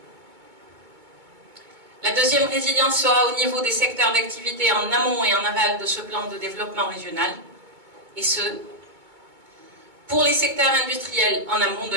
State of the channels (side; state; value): left; late; 2.2 ms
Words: La deuxième résilience sera au niveau des secteurs d'activité en amont et en aval de ce plan de développement régional, et ce, pour les secteurs industriels en amont de